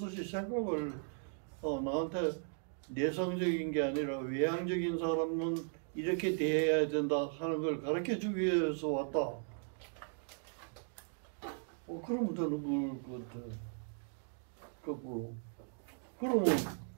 생각을 나한테 내성적인 게 아니라 외향적인 사람은 이렇게 대해야 된다 하는 걸 가르쳐 주기 위해서 왔다. 그러면 되는 걸 같아. 거꾸로. 그러면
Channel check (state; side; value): silent; left; 53 dB below the other